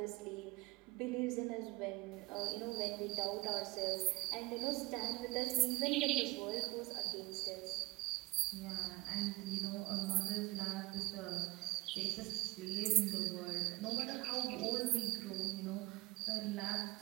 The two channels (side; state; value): left; quieter; 20.7 dB